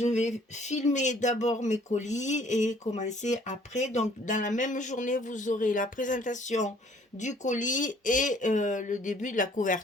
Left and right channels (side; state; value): both; normal; correlation 0.58